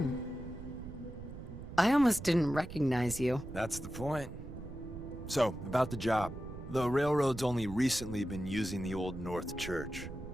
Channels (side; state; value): right; noise; rumble, 11 dB below the sound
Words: I almost didn't recognize you. That's the point. So, about the job. The railroad's only recently been using the Old North Church.